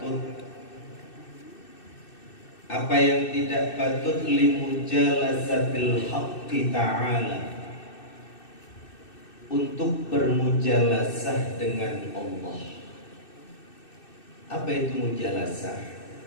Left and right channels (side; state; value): right; late; 2.6 ms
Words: Apa yang tidak patut? Li mujalasatil haqqi ta'ala, untuk bermujalasah dengan Allah. Apa itu mujalasah?